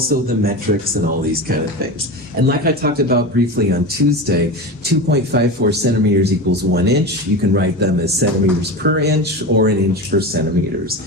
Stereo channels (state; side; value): normal; both; correlation 0.25